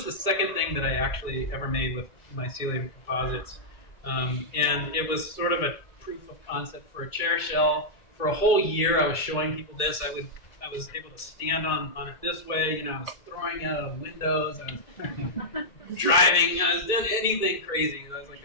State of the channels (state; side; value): late; right; 2.0 ms